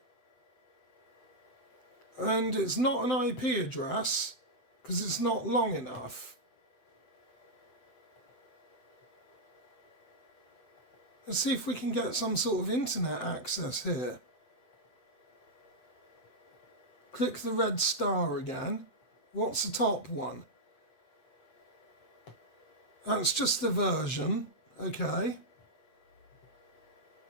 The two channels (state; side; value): late; right; 7.8 ms